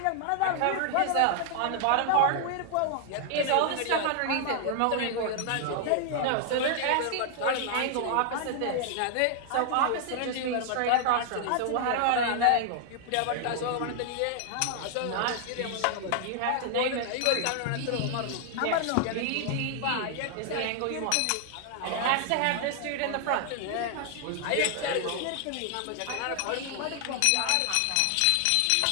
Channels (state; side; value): different; both; correlation 0.00